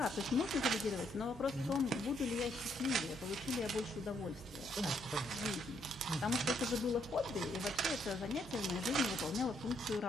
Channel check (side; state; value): both; normal; correlation 0.73